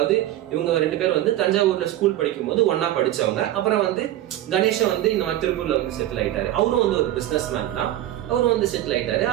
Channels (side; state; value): left; quieter; 13.8 dB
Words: இவங்க 2 பேரும் வந்து தஞ்சாவூர்ல ஸ்கூல் படிக்கும் போது ஒன்னா படிச்சவங்க. அப்புறம் வந்து கணேஷை வந்து இந்த மாதிரி திருப்பூர்ல வந்து செட்டில் ஆயிட்டாரு. அவரும் வந்து ஒரு பிசினஸ் மேன் தான், அவரும் வந்து செட்டில் ஆயிட்டாரு.